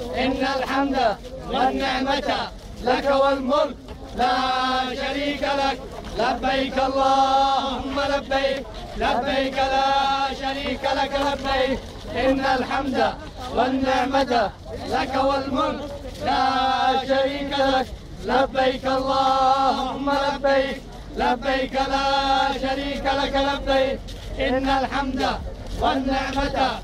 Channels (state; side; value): identical; both; correlation 1.00